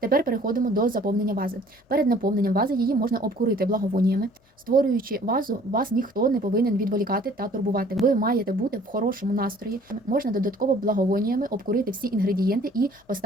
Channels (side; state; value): both; normal; correlation 0.54